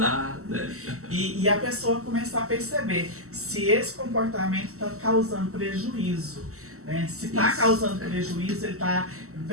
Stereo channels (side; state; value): left; late; 0.64 ms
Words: né? E a pessoa começar a perceber se esse comportamento está causando prejuízo. Né? Se está causando prejuízo, ele está